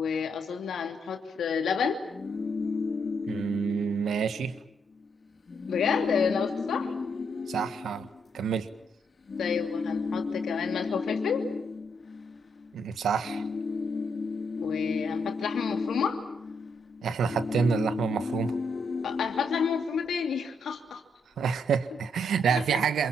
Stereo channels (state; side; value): normal; both; correlation 0.76